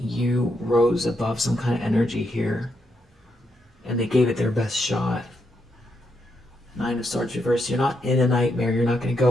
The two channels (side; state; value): both; normal; correlation 0.81